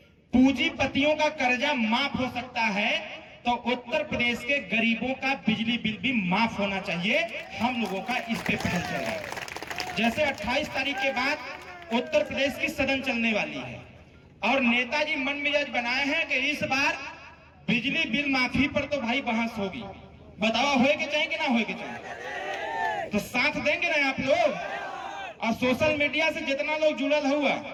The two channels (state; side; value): identical; both; correlation 1.00